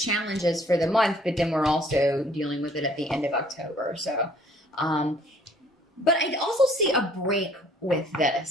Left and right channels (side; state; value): both; normal; correlation 0.59